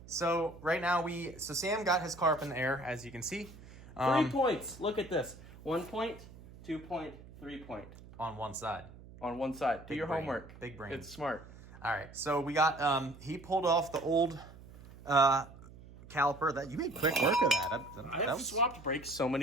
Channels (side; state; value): right; noise; hum, 18 dB below the sound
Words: So right now so Sam got his car up in the air, as you can see. 3 points. Look at this. 1 point, 2 point, 3 point. On one side. On one side. Do your homework. Big brain. It's smart. All right. So we got, he pulled off the old caliper. That you made quick work of that. I have swapped brakes so